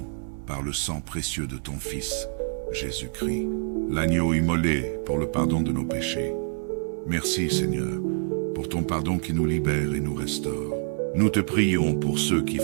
par le sang précieux de ton Fils, Jésus-Christ, l'agneau immolé pour le pardon de nos péchés. Merci Seigneur, pour ton pardon qui nous libère et nous restaure. Nous te prions pour ceux qui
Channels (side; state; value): left; silent; 61 dB below the other